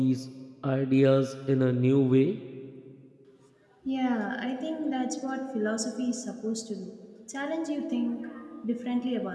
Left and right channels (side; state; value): both; identical; correlation 1.00